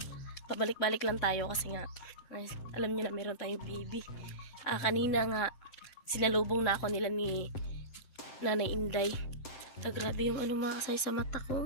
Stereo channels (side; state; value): right; late; 7.7 ms